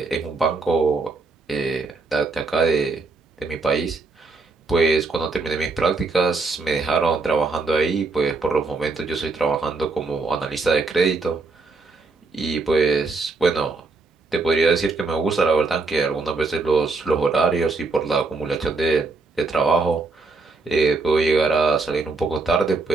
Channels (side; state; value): left; quieter; 3.8 dB